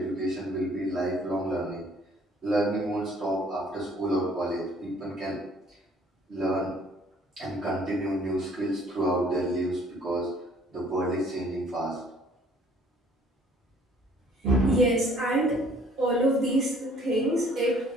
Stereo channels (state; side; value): normal; both; correlation 0.58